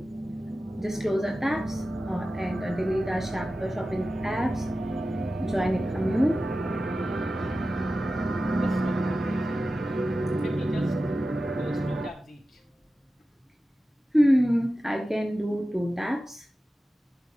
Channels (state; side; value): normal; both; correlation 0.94